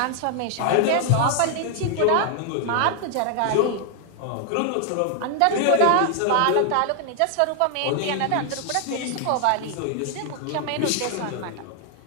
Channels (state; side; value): different; both; correlation 0.00